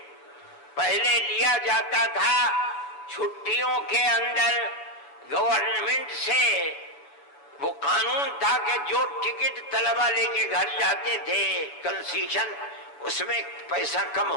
پہلے لیا جاتا تھا چھٹیوں کے اندر گورنمنٹ سے، وہ قانون تھا کہ جو ٹکٹ طلبہ لے کے گھر جاتے تھے کنسیشن، اس میں پیسہ کم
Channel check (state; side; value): late; right; 7.0 ms